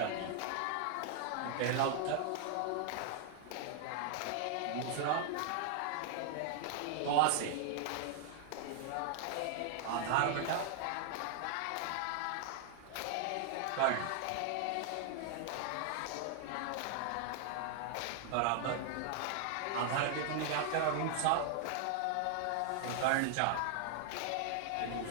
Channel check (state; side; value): different; both; correlation 0.00